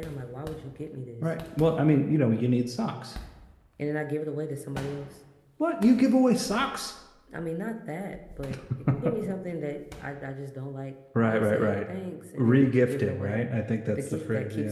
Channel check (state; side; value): identical; both; correlation 1.00